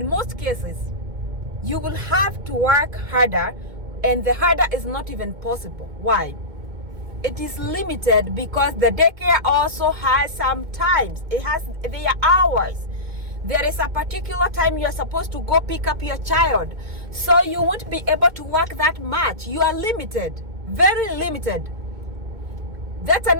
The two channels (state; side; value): late; left; 2.2 ms